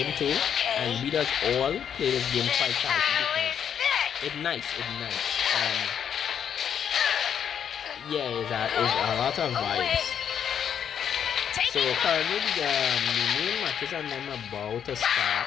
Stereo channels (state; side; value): quieter; right; 8.4 dB